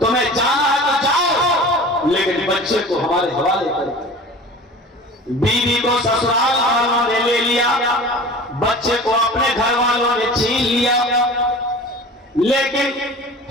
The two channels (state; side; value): normal; both; correlation 0.39